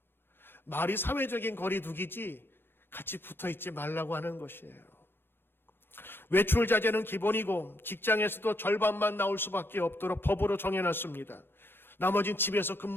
말이 사회적인 거리두기지 같이 붙어있지 말라고 하는 것이에요. 외출 자제는 기본이고 직장에서도 절반만 나올 수밖에 없도록 법으로 정해놨습니다. 나머지는 집에서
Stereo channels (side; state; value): right; late; 0.10 ms